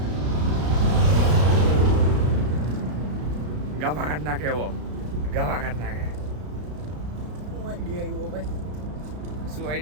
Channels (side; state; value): left; late; 33 ms